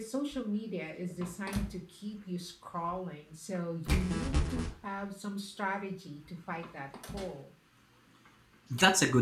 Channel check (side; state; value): both; identical; correlation 1.00